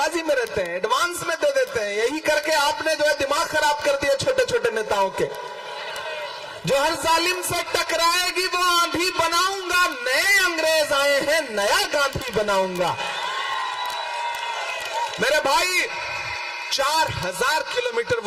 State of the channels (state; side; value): identical; both; correlation 1.00